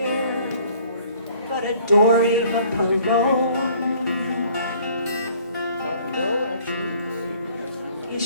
but adore Eva Perón. No, actually. Is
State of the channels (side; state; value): both; inverted; correlation -0.56